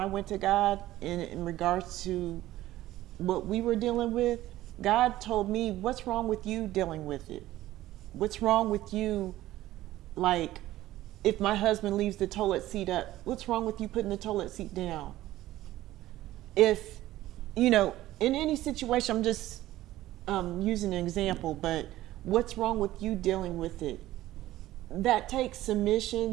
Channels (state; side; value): quieter; left; 15.3 dB